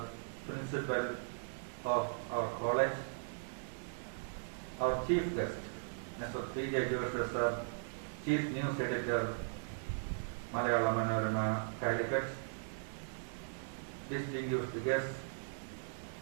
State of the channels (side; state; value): left; silent; digital silence